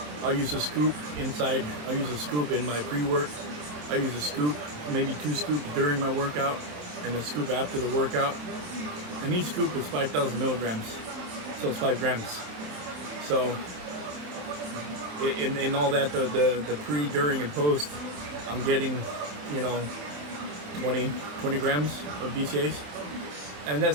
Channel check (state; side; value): late; left; 27 ms